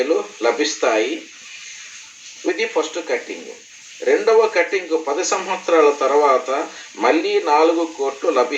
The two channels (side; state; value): both; identical; correlation 1.00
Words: లభిస్తాయి. ఇది ఫస్ట్ కటింగ్. రెండవ కటింగ్ 10 సంవత్సరాల తర్వాత మళ్ళీ 4 కోట్లు